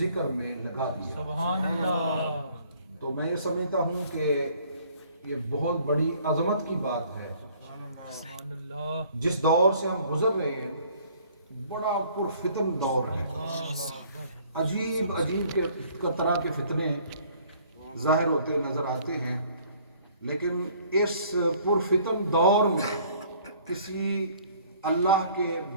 میں لگا دیا۔ سبحان اللہ۔ تو میں یہ سمجھتا ہوں کہ یہ بہت بڑی عظمت کی بات ہے۔ جس دور سے ہم گزر رہے ہیں بڑا پرفتن دور ہے، عجیب طرح کے فتنے ظاہر ہوتے نظر آتے ہیں، لیکن اس پرفتن دور میں کسی اللہ کے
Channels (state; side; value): inverted; both; correlation -0.57